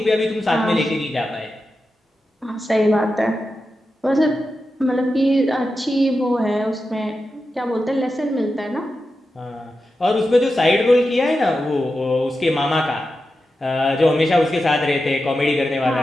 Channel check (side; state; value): both; normal; correlation 0.90